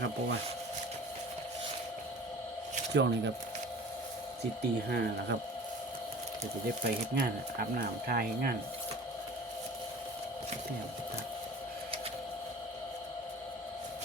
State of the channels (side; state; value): both; normal; correlation 0.43